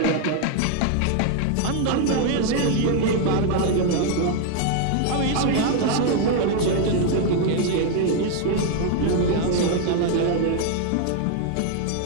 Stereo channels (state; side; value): different; both; correlation 0.00